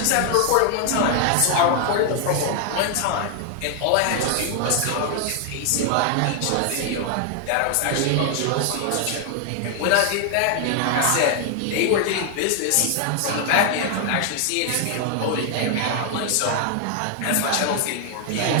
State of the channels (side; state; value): both; different; correlation 0.00